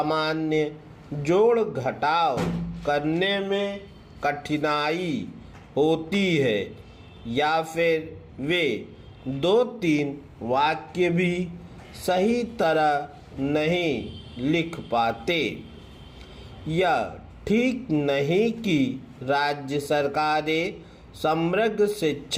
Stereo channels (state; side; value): identical; both; correlation 1.00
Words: जोड़ घटाव करने में कठिनाई होती है या फिर वे 2-3 वाक्य भी सही तरह नहीं लिख पाते। यह ठीक नहीं कि राज्य सरकारें समग्र